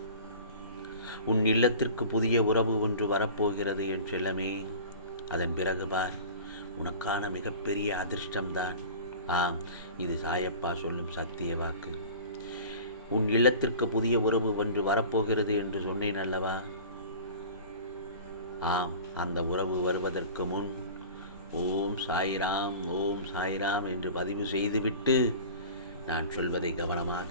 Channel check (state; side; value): inverted; both; correlation -0.39